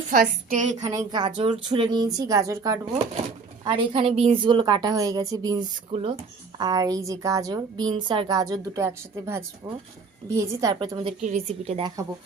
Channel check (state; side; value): quieter; left; 4.6 dB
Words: ফার্স্টে এখানে গাজর ছুলে নিয়েছি, গাজর কাটবো। আর এখানে বিনসগুলো কাটা হয়ে গেছে, বিনসগুলো। আর এই যে গাজর, বিনস আর গাজর দুটো একসাথে ভাজবো, ভেজে তারপরে তোমাদেরকে রেসিপিটা দেখাবো।